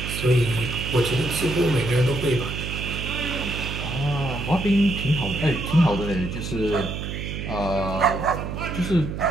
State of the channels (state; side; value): noise; right; hum, 6 dB below the sound